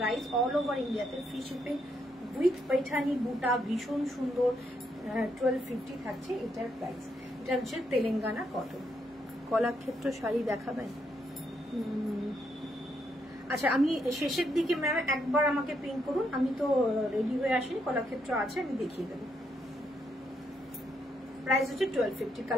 অল ওভার ইন্ডিয়াতে ফ্রি শিপিং উইথ पैठानी বুটা, ভীষণ সুন্দর। 1250 থাকছে এটার প্রাইস। এটা হচ্ছে তেলেঙ্গানা কটন। কলাক্ষেত্র শাড়ি দেখাবেন? আচ্ছা আমি শেষের দিকে ম্যাম একবার আমাকে পিন করুন, আমি তো রেডি হয়ে আসিনি, কলাক্ষেত্র আছে আমি দেখিয়ে দেবো। প্রাইস হচ্ছে 1250।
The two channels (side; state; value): both; normal; correlation 0.77